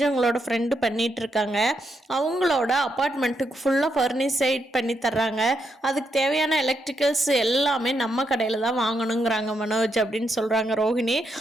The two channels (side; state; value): both; normal; correlation 0.80